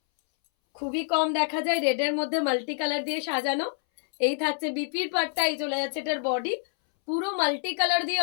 খুবই কম দেখা যায় রেডের মধ্যে মাল্টি কালার দিয়ে সাজানো। এই থাকছে বিপির পার্টটা, এই চলে যাচ্ছে এটার বডি। পুরো মাল্টি কালার দিয়ে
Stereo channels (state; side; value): silent; right; 60 dB below the other